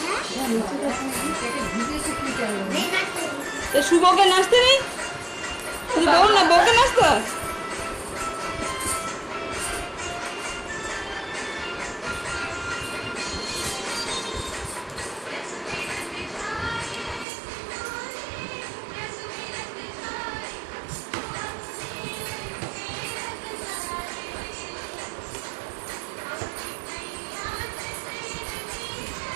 শুভকে নাচতে নেই, শুধু বল না, বউকে নাচতে হয়।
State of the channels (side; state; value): left; drops out; at 17.2 s